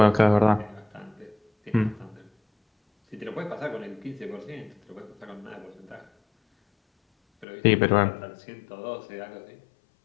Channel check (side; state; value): right; drops out; at 7.5 s